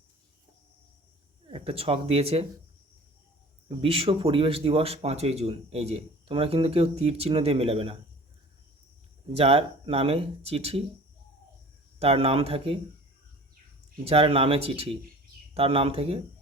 একটা ছক দিয়েছে, বিশ্ব পরিবেশ দিবস 5ই জুন। এই যে তোমরা কিন্তু কেউ তীর চিহ্ন দিয়ে মেলাবে না। যার নামে চিঠি তার নাম থাকে, যার নামে চিঠি তার নাম থেকে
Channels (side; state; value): both; normal; correlation 0.44